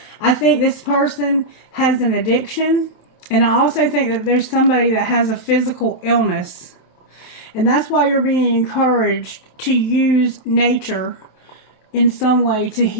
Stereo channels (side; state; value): right; late; 27 ms